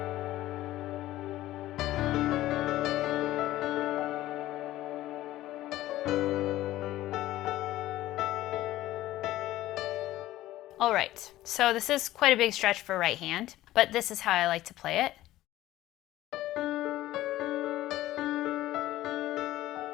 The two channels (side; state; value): right; quieter; 15.3 dB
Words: All right, so this is quite a big stretch for right hand, but this is how I like to play it.